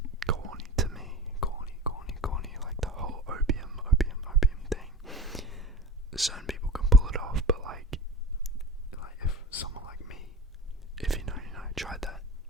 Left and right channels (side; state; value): both; normal; correlation 0.33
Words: corny to me, corny, like the whole opium thing. Certain people can pull it off, but like if someone like me, if you know, tried that,